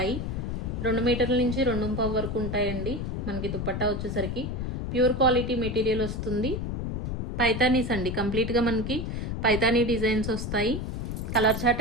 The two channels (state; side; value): noise; left; rumble, 3 dB below the sound